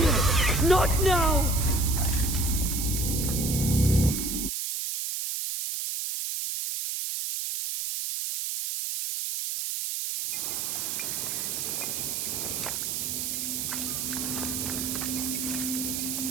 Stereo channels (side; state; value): right; noise; hiss, 2 dB below the sound